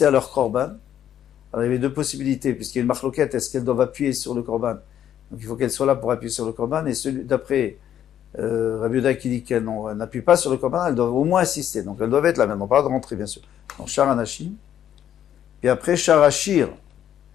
à leur Korban. Alors, il y avait deux possibilités, puisqu'il y a une marloquette, est-ce qu'elles doivent appuyer sur le Korban? Donc, il faut qu'elles soient là pour appuyer sur le Korban, et celui d'après Rabbi Yehuda qui dit qu'elles n'appuient pas sur le Korban, elles doivent au moins assister. Donc, elles doivent être là maintenant, pas de rentrer, bien sûr. Donc, Shara Nashim. Et après, Shara Shir.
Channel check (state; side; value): quieter; right; 10.4 dB